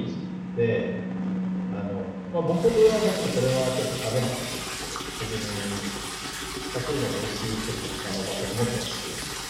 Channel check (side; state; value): both; identical; correlation 1.00